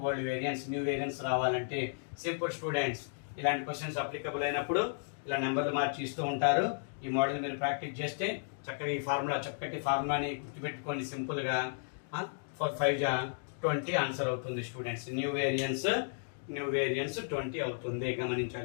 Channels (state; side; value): silent; right; digital silence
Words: old variance. New variance రావాలంటే సింపుల్ స్టూడెంట్స్. ఇలాంటి క్వశ్చన్స్ అప్లికబుల్ అయినప్పుడు ఇలా నెంబర్లు మార్చి ఇస్తూ ఉంటారు. ఈ మోడల్ మీరు ప్రాక్టీస్ చేస్తే చక్కగా ఈ చక్కటి ఫార్ములాని గుర్తుపెట్టుకోండి సింపుల్గా. 4 5 20 ఆన్సర్ అవుతుంది స్టూడెంట్స్. న్యూ వేరియన్స్ 20 అవుతుంది.